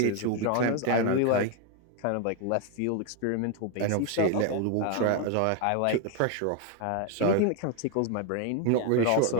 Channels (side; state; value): both; different; correlation 0.01